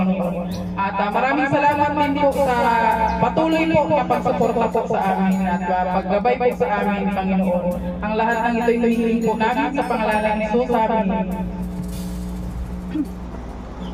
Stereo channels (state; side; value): identical; both; correlation 1.00